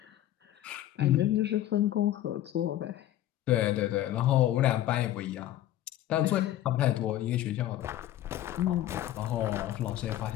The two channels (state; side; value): quieter; right; 13.2 dB